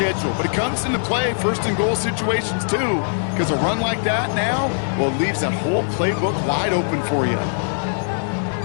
But it comes into play 1st and goal situations too, because a run like that now, well, it leaves that whole playbook wide open for you.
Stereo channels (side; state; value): right; silent; digital silence